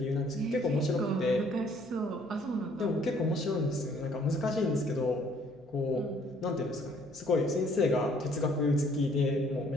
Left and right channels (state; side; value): normal; both; correlation 0.61